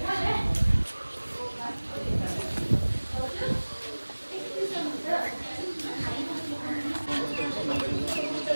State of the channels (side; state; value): both; inverted; correlation -1.00